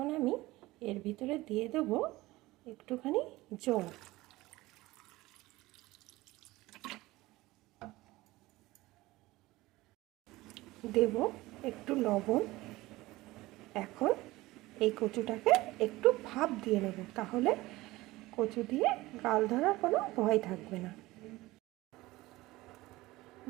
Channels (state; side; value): quieter; left; 19.1 dB